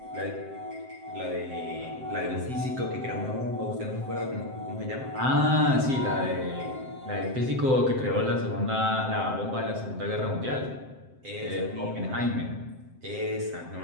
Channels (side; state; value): left; late; 7.7 ms